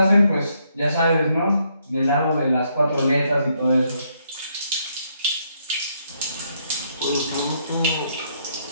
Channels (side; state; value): both; inverted; correlation -0.74